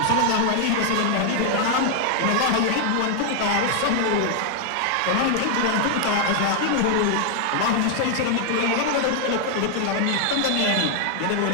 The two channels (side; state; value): both; different; correlation 0.00